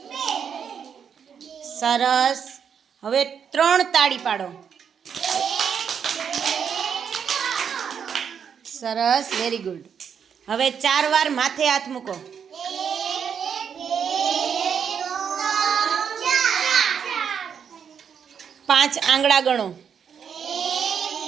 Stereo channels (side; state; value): left; quieter; 7.4 dB